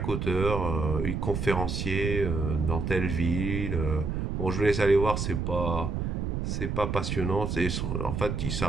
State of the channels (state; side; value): noise; right; rumble, 2 dB below the sound